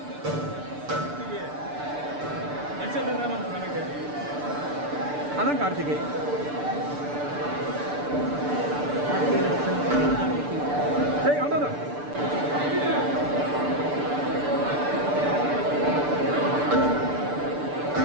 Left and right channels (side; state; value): left; late; 6.8 ms